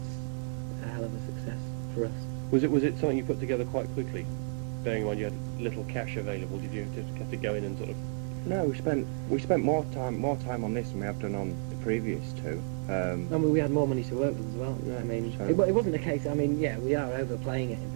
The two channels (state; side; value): silent; left; 57 dB below the other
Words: a hell of a success for us. Was it something you put together quite quickly? Bearing in mind you had little cash available, did you just have to go in and sort of? No, we spent more time on this than we have done on the previous two. I mean, we had more money to work with as well. Yeah, I mean, so- it wasn't a case. I mean, yeah, we are overplaying it.